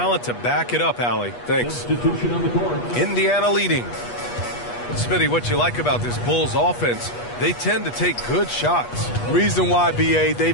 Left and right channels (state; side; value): late; right; 8.3 ms